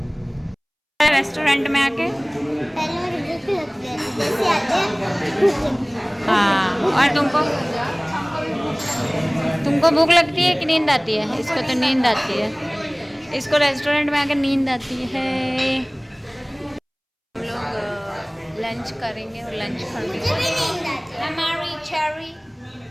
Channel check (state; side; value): identical; both; correlation 1.00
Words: रेस्टोरेंट में आके हाँ, और तुमको भूख लगती है कि नींद आती है? इसको तो नींद आती है, इसको रेस्टोरेंट में आके नींद आती है। हम लोग लंच करेंगे और लंच करेंगे। हमारी cherry,